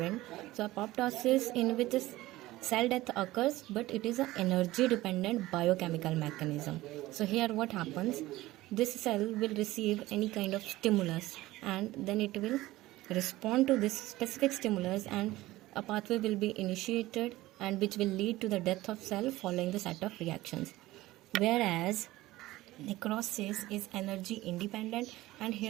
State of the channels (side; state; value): left; quieter; 17.5 dB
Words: So apoptosis in which is cell death occurs, but it is an energy dependent biochemical mechanism. So here what happens, this cell will receive any kind of stimulus and then it will respond to this specific stimulus and a pathway will be initiated and which will lead to the death of cell following the set of reactions. Whereas necrosis is energy independent, and